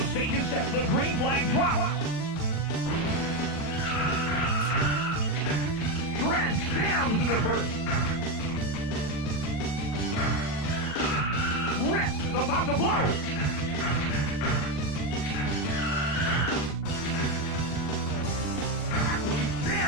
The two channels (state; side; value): late; right; 40 ms